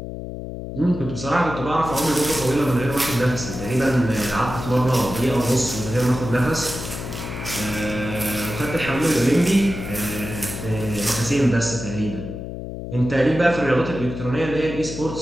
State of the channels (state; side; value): noise; left; hum, 8 dB below the sound